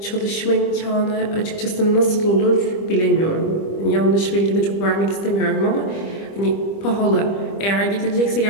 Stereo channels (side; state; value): right; late; 25 ms